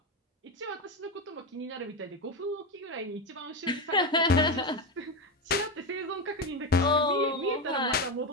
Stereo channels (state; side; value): normal; both; correlation 0.14